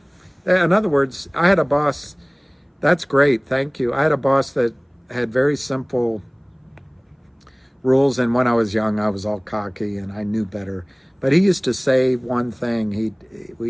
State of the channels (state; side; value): identical; both; correlation 1.00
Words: In other words, I had a boss. That's great, thank you. I had a boss that had very simple rules, and when I was young, I was all cocky and I knew better. But he used to say one thing. He